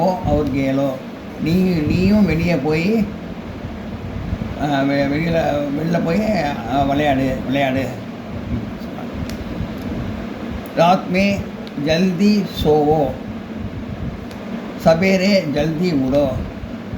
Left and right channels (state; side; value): identical; both; correlation 1.00